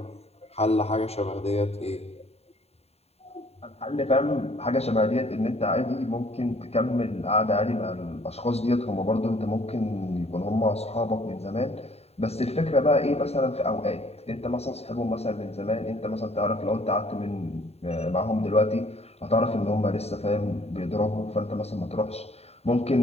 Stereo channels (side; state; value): right; late; 0.30 ms